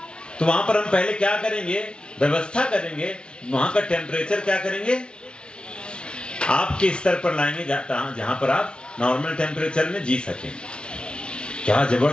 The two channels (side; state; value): right; late; 0.056 ms